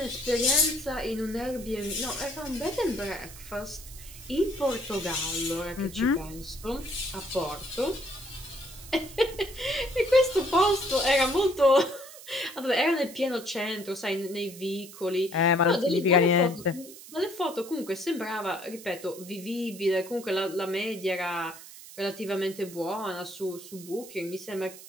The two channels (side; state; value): right; noise; hiss, 16 dB below the sound